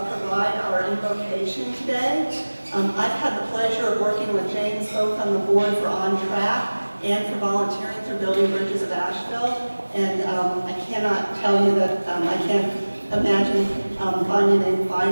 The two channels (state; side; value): inverted; both; correlation -1.00